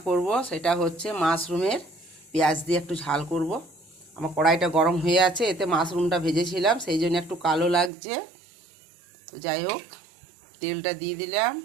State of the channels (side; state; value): left; drops out; at 7.9 s